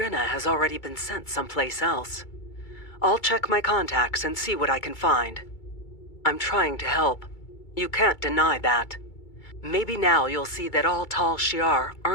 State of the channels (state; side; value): late; right; 2.3 ms